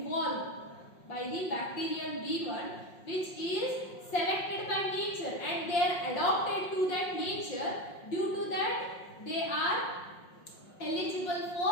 by the bacterial B1, which is selected by nature, and they are adopted to that nature. Due to that they are eligible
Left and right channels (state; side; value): late; right; 5.5 ms